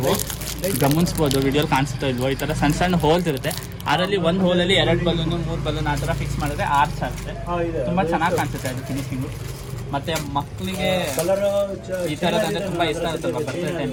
ಗಮನಿಸ್ಬೋದು, ವಿಡಿಯೋಲಿ ಕಾಣಿಸ್ತಾ ಇಲ್ವೋ, ಈ ಥರ ಸಣ್ಣ ಹೋಲ್ಸ್ ಇರುತ್ತೆ. ಅದರಲ್ಲಿ ಒಂದು ಹೋಲಲ್ಲಿ 2 ಬಲೂನು 3 ಬಲೂನ್ ಆ ಥರ ಫಿಕ್ಸ್ ಮಾಡಿದ್ರೆ ಆರ್ಚ್ ಆಗುತ್ತೆ. ತುಂಬ ಚೆನ್ನಾಗಿ ಕಾಣಿಸುತ್ತೆ ಅದು ಫಿನಿಶಿಂಗು. ಮತ್ತು ಮಕ್ಕಳಿಗೆ ಈ ಥರದಂದರೆ ತುಂಬ ಇಷ್ಟ ಆಗುತ್ತಲ್ವ ಬರ್ತ್ಡೇ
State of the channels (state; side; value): identical; both; correlation 1.00